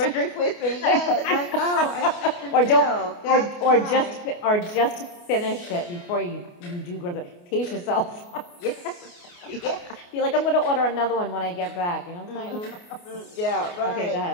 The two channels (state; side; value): late; right; 28 ms